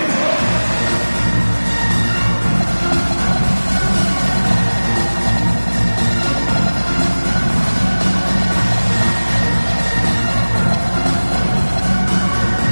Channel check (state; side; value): inverted; both; correlation -1.00